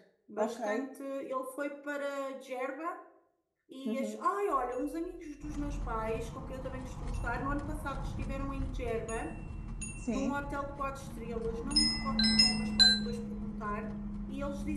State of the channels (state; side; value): identical; both; correlation 1.00